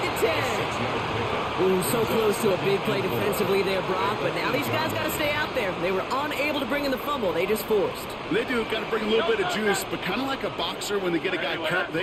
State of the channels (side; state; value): both; identical; correlation 1.00